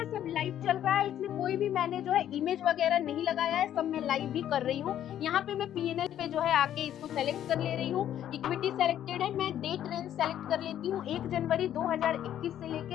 सब लाइव चल रहा है, इसमें कोई भी मैंने जो है इमेज वगैरह नहीं लगाया है, सब मैं लाइव भी कर रही हूँ। यहाँ पे मैं पीएनएल पे जो है आके इसको सेलेक्ट कर ले रही हूँ, इक्विटी सेलेक्टेड है, मैं डेट रेंज सेलेक्ट कर लेती हूँ 1 जनवरी 2021 से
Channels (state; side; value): quieter; right; 11.0 dB